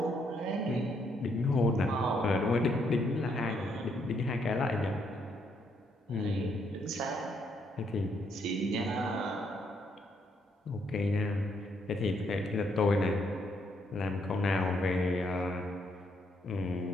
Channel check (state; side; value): normal; both; correlation 0.73